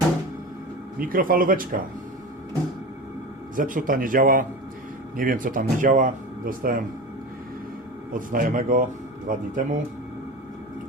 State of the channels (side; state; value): both; normal; correlation 0.29